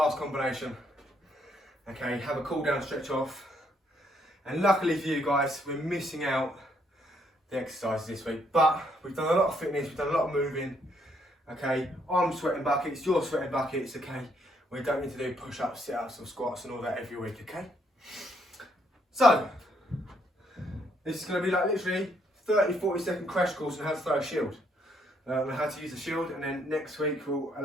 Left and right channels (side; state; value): both; normal; correlation 0.71